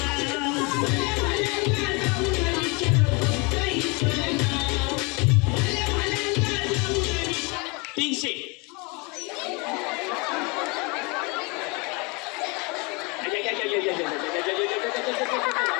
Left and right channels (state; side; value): quieter; right; 29.3 dB